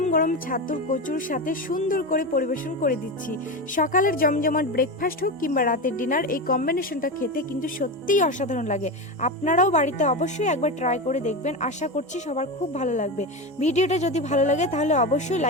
গরম ছাতুর কচুর সাথে সুন্দর করে পরিবেশন করে দিচ্ছি। সকালের জমজমাট ব্রেকফাস্ট হোক কিংবা রাতের ডিনার, এই কম্বিনেশনটা খেতে কিন্তু সত্যিই অসাধারণ লাগে। আপনারাও বাড়িতে অবশ্যই একবার ট্রাই করে দেখবেন। আশা করছি সবার খুব ভালো লাগবে। ভিডিওটা যদি ভালো লাগে তাহলে অবশ্যই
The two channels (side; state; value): both; normal; correlation 0.19